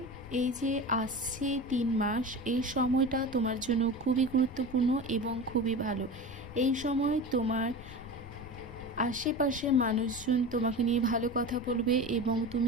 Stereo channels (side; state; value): left; noise; rumble, 15 dB below the sound